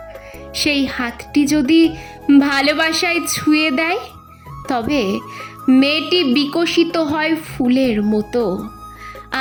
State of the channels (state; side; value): identical; both; correlation 1.00